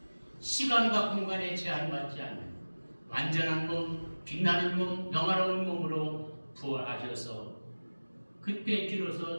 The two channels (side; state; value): both; inverted; correlation -1.00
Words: 시간과 공간에 제한받지 않는 완전한 몸, 빛나는 몸, 영화로운 몸으로 부활하셔서 그때